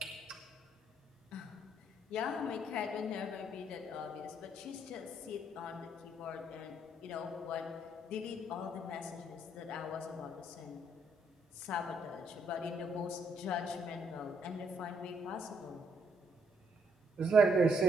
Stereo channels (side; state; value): both; normal; correlation 0.71